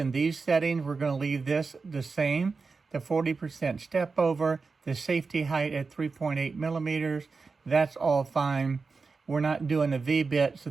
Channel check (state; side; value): quieter; left; 4.5 dB